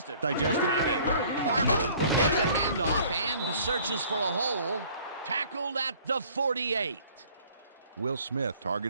Got it. Barber will get the handoff and searches for a hole. Tackled at the 48. Will Smith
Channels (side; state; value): both; inverted; correlation -0.54